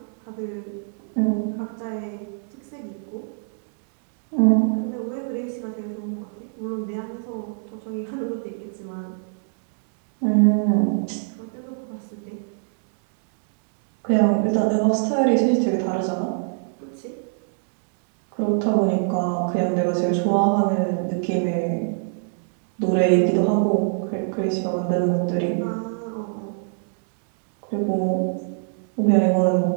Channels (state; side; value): silent; left; digital silence